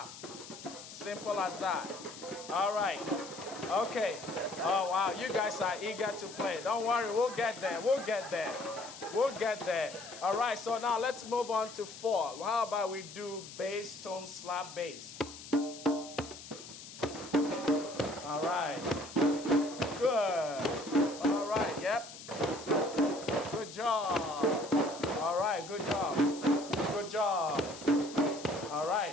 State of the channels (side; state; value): left; noise; hiss, 14 dB below the sound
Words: Simple as that. All right. Okay. Oh, wow. You guys are eager to play. Don't worry. We'll get there. We'll get there. We'll get there. All right. So now let's move on to 4. How about we do bass, tone, slap, bass? All right. Good. All right. Yep. Good job. All right. Good job. Good job. All